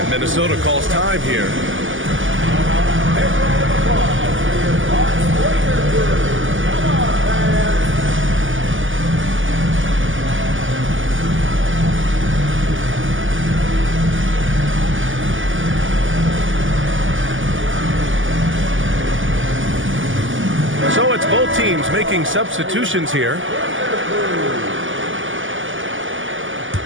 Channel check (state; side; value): late; left; 0.57 ms